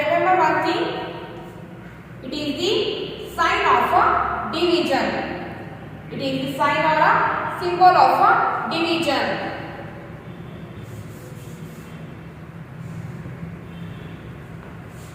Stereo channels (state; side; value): identical; both; correlation 1.00